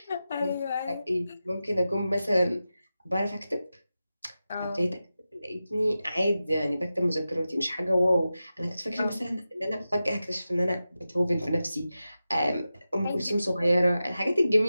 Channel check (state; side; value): inverted; both; correlation -0.93